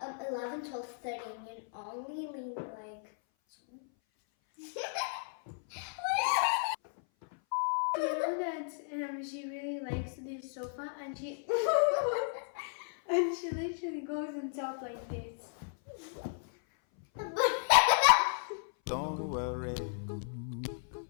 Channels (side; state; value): right; silent; 55 dB below the other